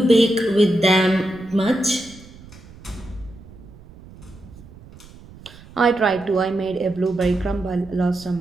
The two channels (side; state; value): right; noise; rumble, 20 dB below the sound